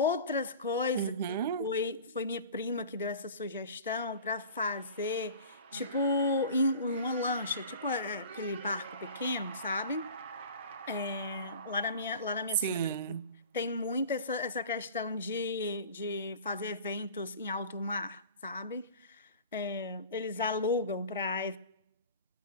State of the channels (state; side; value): inverted; both; correlation -0.40